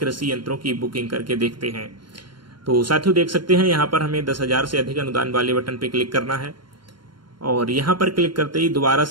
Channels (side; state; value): left; late; 0.72 ms